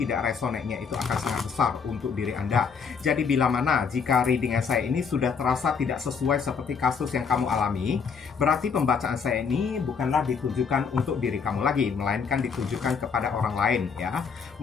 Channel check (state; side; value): quieter; right; 6.0 dB